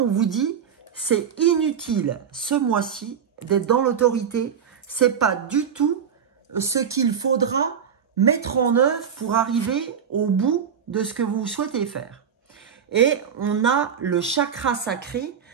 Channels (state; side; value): quieter; left; 7.6 dB